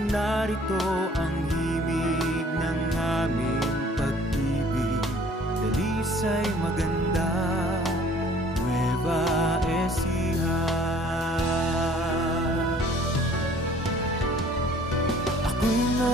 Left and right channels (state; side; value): normal; both; correlation 0.55